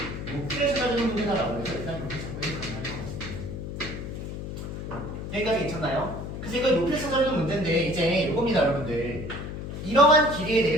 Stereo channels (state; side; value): noise; left; hum, 7 dB below the sound